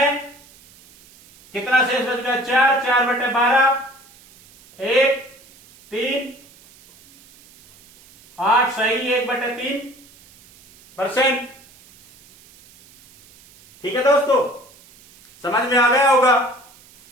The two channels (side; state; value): right; noise; hiss, 26 dB below the sound